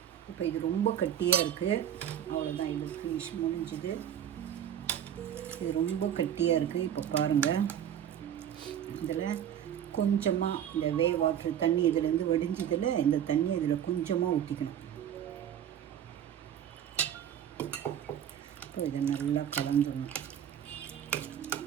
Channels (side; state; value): left; quieter; 9.7 dB